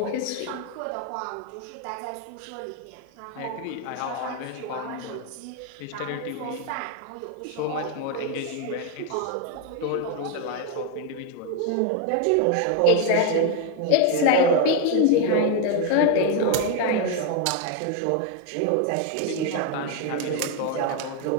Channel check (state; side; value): different; both; correlation 0.01